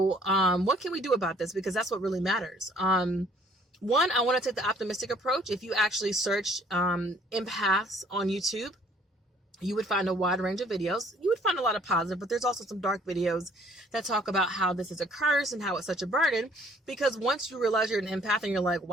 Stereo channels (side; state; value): both; normal; correlation 0.59